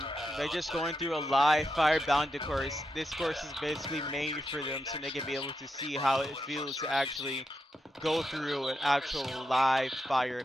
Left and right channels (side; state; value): both; normal; correlation 0.86